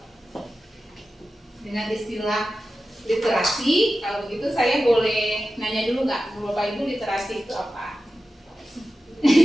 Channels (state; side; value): normal; both; correlation 0.93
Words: istilah literasi? Kalau begitu saya boleh nanya dulu nggak, Bapak Ibu literasi itu apa?